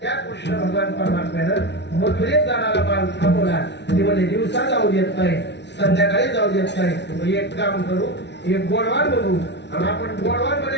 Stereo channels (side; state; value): right; late; 0.50 ms